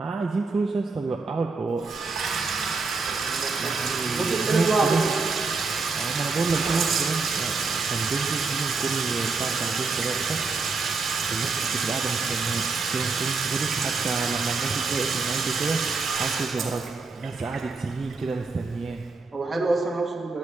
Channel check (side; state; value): left; quieter; 4.2 dB